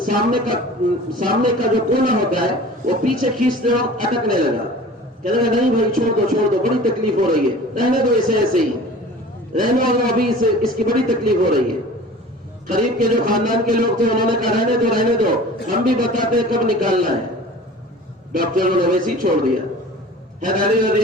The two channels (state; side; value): normal; both; correlation 0.42